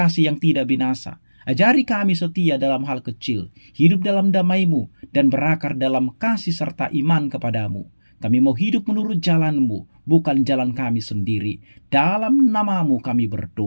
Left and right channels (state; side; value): inverted; both; correlation -1.00